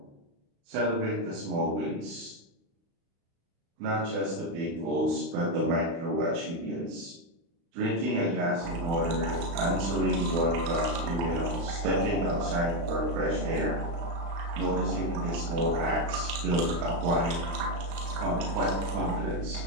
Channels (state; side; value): late; left; 36 ms